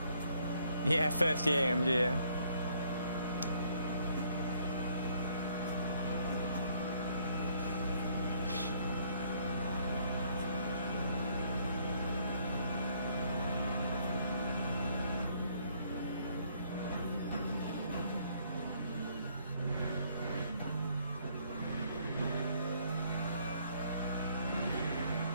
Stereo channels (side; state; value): both; inverted; correlation -0.66